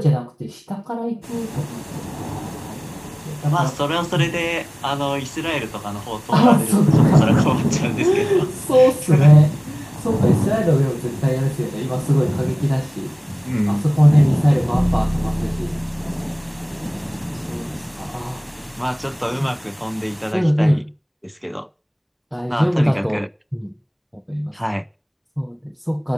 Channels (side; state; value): both; identical; correlation 1.00